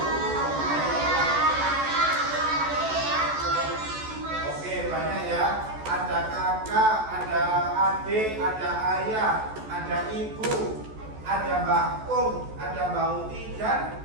Oke, banyak ya. Ada kakak, ada adik, ada ayah, ada ibu, ada Mbak Kum, ada Mbak Uti dan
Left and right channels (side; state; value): left; late; 14 ms